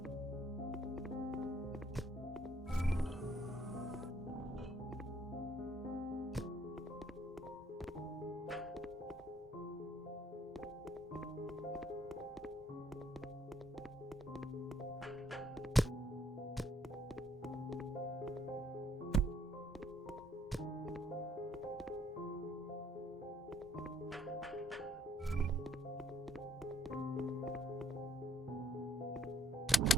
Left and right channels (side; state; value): both; normal; correlation 0.66